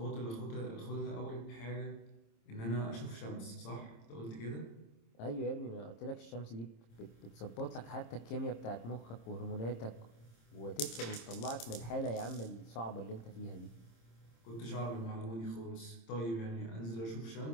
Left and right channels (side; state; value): right; late; 26 ms